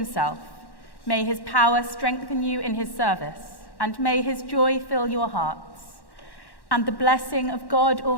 May his power strengthen you in his service, and may his joy fill your hearts. And the blessing of God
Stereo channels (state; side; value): late; right; 1.1 ms